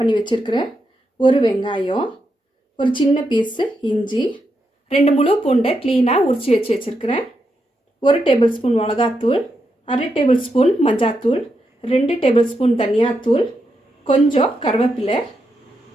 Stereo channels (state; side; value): normal; both; correlation 0.84